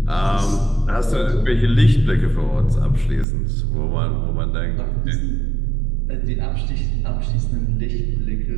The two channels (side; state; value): left; drops out; at 3.2 s